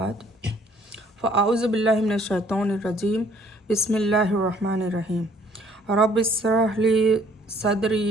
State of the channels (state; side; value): normal; both; correlation 0.60